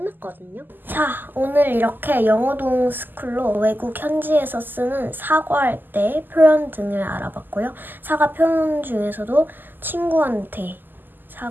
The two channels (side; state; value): left; late; 0.090 ms